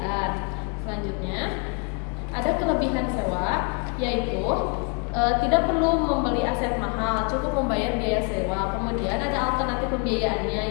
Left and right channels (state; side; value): quieter; right; 34.7 dB